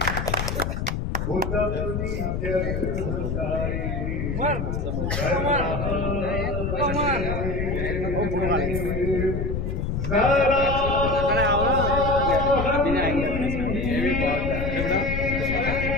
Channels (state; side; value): noise; left; rumble, 2 dB below the sound